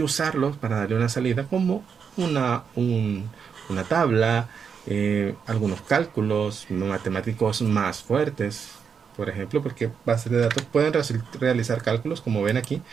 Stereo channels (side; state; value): left; quieter; 6.5 dB